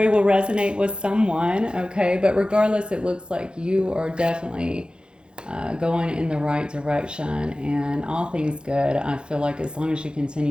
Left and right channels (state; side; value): late; left; 0.051 ms